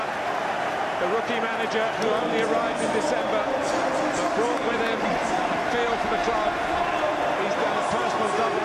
The rookie manager who only arrived in December, but brought with him a feel for the club. He's done a personal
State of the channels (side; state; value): both; identical; correlation 1.00